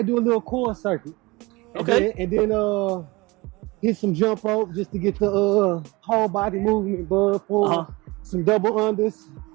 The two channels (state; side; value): quieter; left; 23.2 dB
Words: do a little core circuit. Okay. And then hit some jump rope just to get the whole body movement, some double unders.